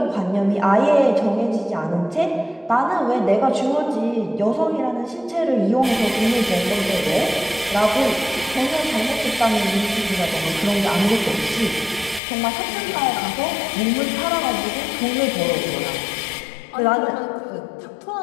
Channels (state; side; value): drops out; right; at 12.2 s